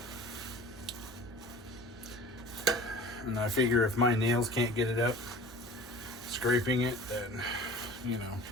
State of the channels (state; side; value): normal; both; correlation 0.41